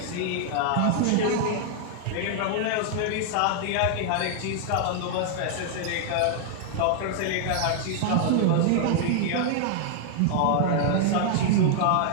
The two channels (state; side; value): different; both; correlation 0.00